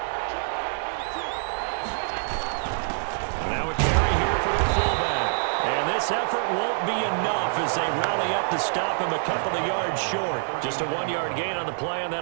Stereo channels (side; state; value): left; silent; 61 dB below the other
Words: Effort won't be enough as they rally up to stop him a couple of yards short. Just a 1-yard gain on the play, and